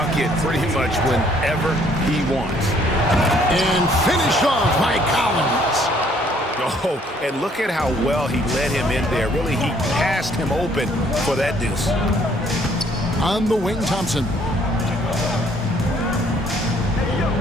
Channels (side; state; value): both; normal; correlation 0.63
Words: pretty much whenever he wants. And finished off by Collins. Oh, and look at how well he led him in there. Really, he passed him open for that deuce. On the wing, Thompson.